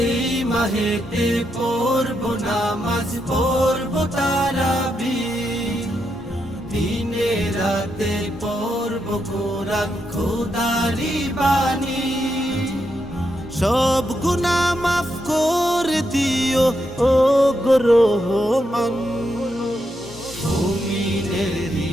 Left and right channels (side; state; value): both; normal; correlation 0.82